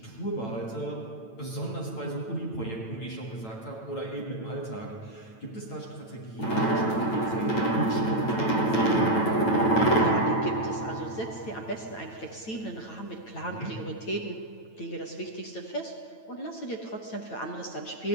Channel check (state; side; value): late; right; 9.0 ms